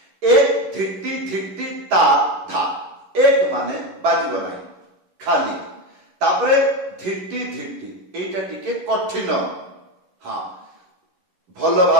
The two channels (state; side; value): late; left; 11 ms